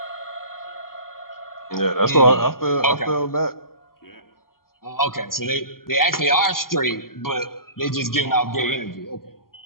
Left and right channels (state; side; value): late; right; 0.92 ms